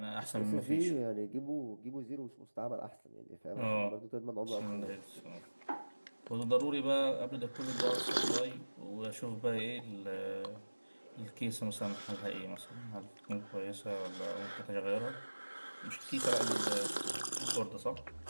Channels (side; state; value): both; inverted; correlation -1.00